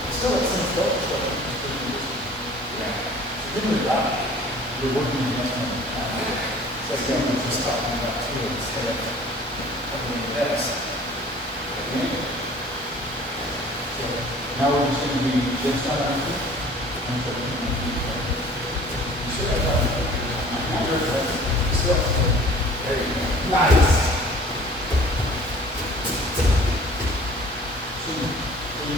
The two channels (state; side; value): normal; both; correlation 0.49